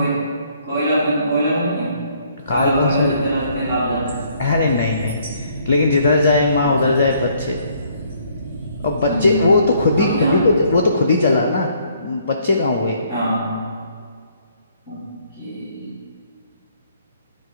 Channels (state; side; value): inverted; both; correlation -0.65